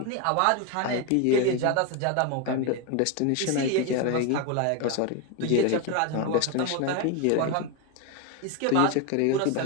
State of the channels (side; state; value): both; different; correlation 0.02